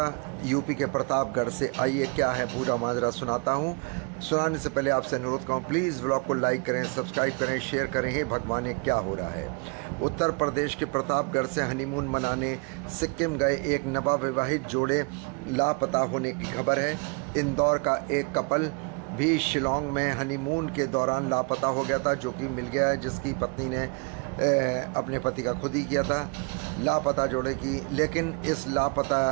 यूपी के प्रतापगढ़ से। आइए क्या है पूरा माजरा सुनाता हूँ। सुनाने से पहले आपसे अनुरोध करूँ, प्लीज़ व्लॉग को लाइक करें, सब्सक्राइब करें, शेयर करें। हे भगवान, ये क्या हो रहा है। उत्तर प्रदेश के प्रतापगढ़ से हनीमून मनाने सिक्किम गए एक नवविवाहित जोड़े लापता होने की खबर है। इंदौर का एक कपल भी शिलोंग में हनीमून के दौरान लापता हो गया था, जो कि मिल गया है, जिसकी पत्नी ने अपने पति का खुद ही किया था। लापता जोड़े की, लेकिन इस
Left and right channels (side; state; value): left; quieter; 33.8 dB